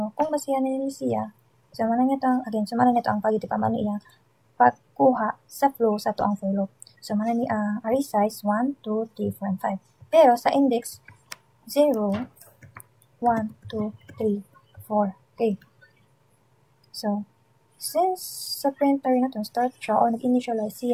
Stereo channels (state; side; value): identical; both; correlation 1.00